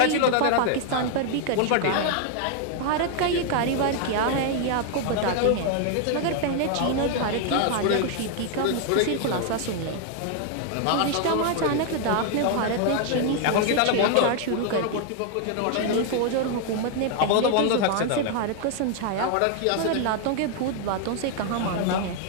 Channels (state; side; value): different; both; correlation 0.00